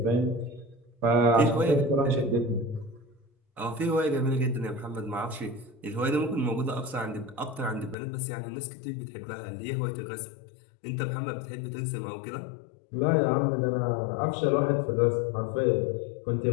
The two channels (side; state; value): right; drops out; at 8.0 s